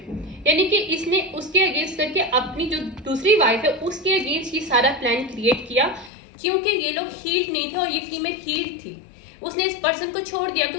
यानी कि इसने उसके अगेंस्ट करके अपनी जो दूसरी वाइफ है उसके अगेंस्ट ये सारा प्लान क्रिएट किया। क्योंकि ये लोग हील्ड नहीं थे और ये फीमेल हील्ड थी, उसने इस पर्सन को छोड़ दिया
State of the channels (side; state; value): right; drops out; at 6.1 s